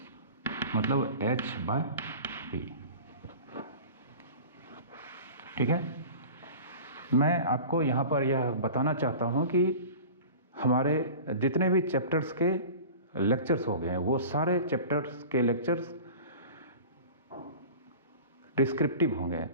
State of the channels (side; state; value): both; inverted; correlation -0.38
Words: मतलब h/p। ठीक है, मैं आपको यहाँ पर यह बताना चाहता हूँ कि हमारे जितने भी चैप्टर्स के लेक्चर्स हो गए हैं वो सारे चैप्टर्स के लेक्चर्स डिस्क्रिप्टिव होंगे,